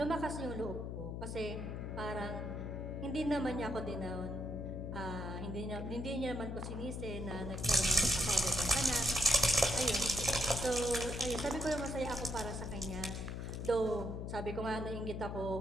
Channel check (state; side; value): noise; left; hum, 5 dB below the sound